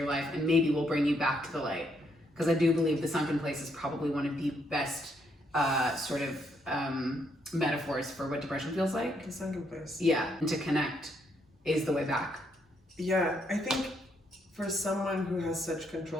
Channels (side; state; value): both; normal; correlation 0.74